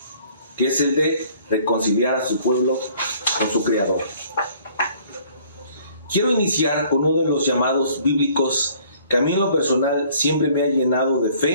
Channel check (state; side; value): inverted; both; correlation -0.58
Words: que es el de reconciliar a su pueblo con su Creador. Quiero iniciar con uno de los llamados bíblicos que a mí en lo personal siempre me ha llenado de